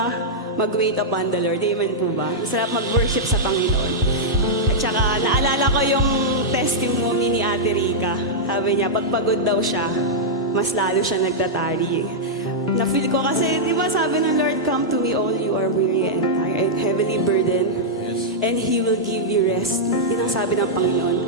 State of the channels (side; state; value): both; normal; correlation -0.07